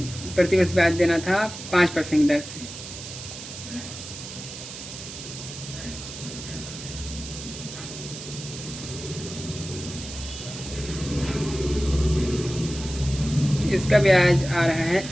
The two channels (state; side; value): noise; right; hiss, 11 dB below the sound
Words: प्रतिवर्ष ब्याज देना था 5% दर से। इसका ब्याज आ रहा है